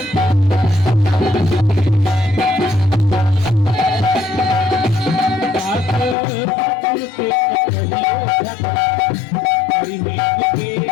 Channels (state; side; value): drops out; right; at 6.2 s